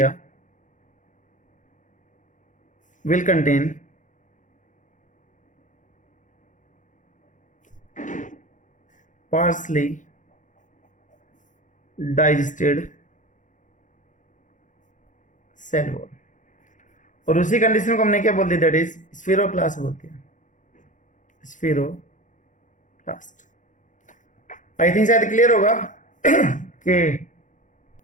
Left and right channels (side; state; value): right; late; 0.37 ms